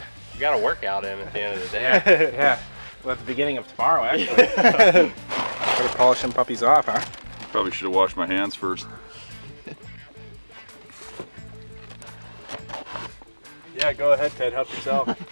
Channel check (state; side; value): inverted; both; correlation -1.00